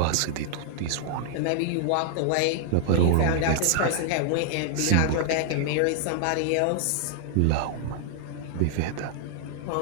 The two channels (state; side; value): different; both; correlation -0.01